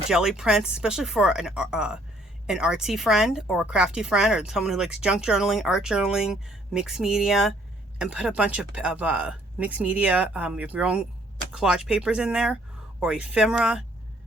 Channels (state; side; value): normal; both; correlation 0.63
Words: jelly prints, especially for an artsy friend or a crafty friend or someone who likes junk journaling, art journaling, mixed media, and put a bunch of mixed media, your own collage papers in there, or ephemera.